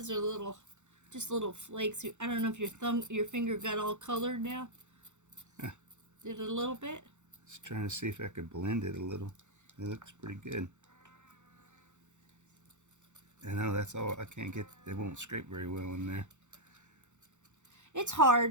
are just little flakes. I don't know if your finger got all colored now. Yeah. Did it a little bit? Just trying to see if I could blend it a little. It looks pretty good. I know that's all. I can't get. It won't scrape very well in there. It's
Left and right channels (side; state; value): left; late; 0.84 ms